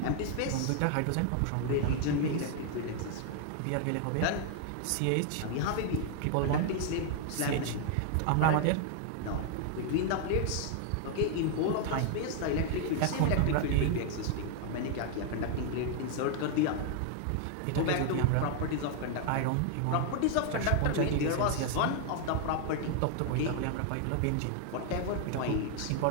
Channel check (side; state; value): both; different; correlation 0.00